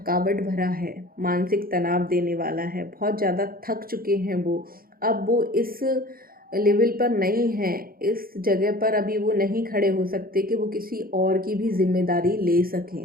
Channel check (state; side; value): late; left; 0.42 ms